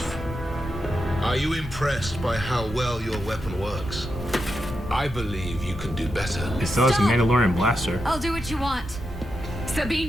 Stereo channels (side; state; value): both; normal; correlation 0.86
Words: Are you impressed by how well your weapon works? I believe you can do better. It still has a Mandalorian blaster. I'll do what you want.